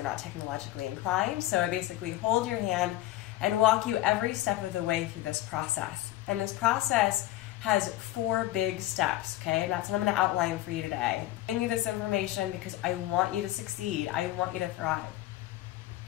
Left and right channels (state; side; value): quieter; right; 15.5 dB